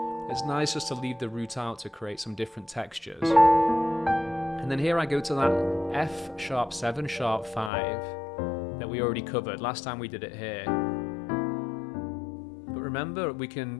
it's nice just to leave the root out to create some different textures. And then here I go to that F sharp 7 sharp 5 that we already covered last time we did it here. But remember, we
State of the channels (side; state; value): right; drops out; at 7.7 s